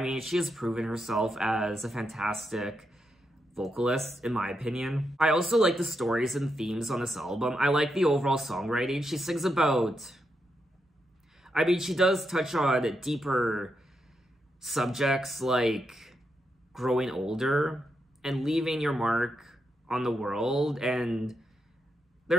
mean, she has proven herself as a fantastic vocalist, in my opinion. I also like the stories and themes on this album. I like the overall songwriting. She sings about... I mean, she does touch on deeper subjects like growing older and leaving your mark on the world, and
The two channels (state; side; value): normal; both; correlation 0.84